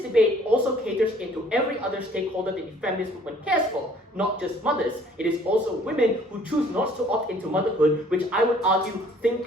debate also caters into every other stakeholder that the feminist movement cares for, not just mothers. It is also women who choose not to opt into motherhood, which I would argue think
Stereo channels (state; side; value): normal; both; correlation 0.57